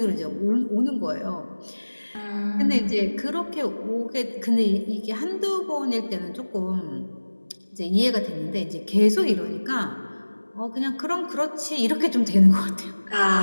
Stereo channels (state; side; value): inverted; both; correlation -1.00